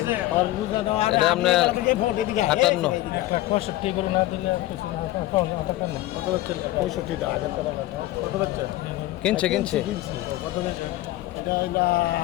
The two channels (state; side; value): quieter; right; 16.4 dB